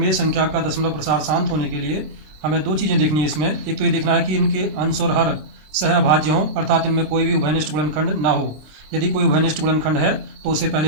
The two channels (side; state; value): left; late; 26 ms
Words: संख्या का दशमलव प्रसार शांत होने के लिए हमें दो चीज़ें देखनी है इसमें। एक तो ये देखना है कि इनके अंश और हर सहअभाज्य हों, अर्थात इनमें कोई भी उभयनिष्ठ गुणनखंड ना हो। यदि कोई उभयनिष्ठ गुणनखंड है तो उसे